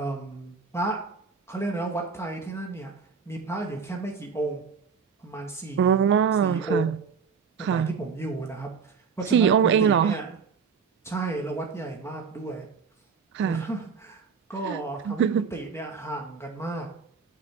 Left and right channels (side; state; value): left; quieter; 5.9 dB